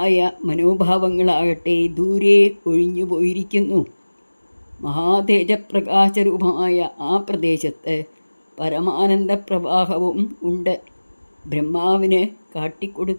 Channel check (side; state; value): both; inverted; correlation -1.00